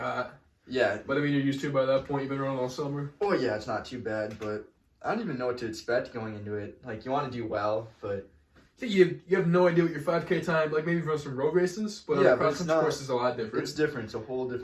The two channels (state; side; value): identical; both; correlation 1.00